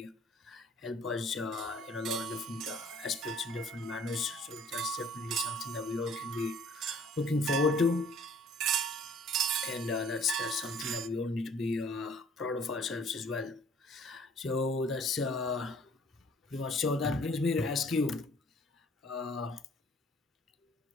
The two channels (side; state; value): both; normal; correlation 0.56